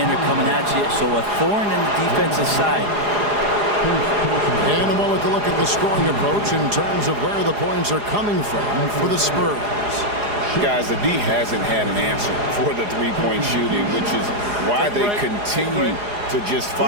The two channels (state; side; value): late; left; 4.8 ms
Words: coming at you, so a thorn in the defensive side. And a moment to look at the scoring approach in terms of where the points are coming from for the Spurs. Guys, the D hasn't had an answer for the three-point shooting, which is why they continue to just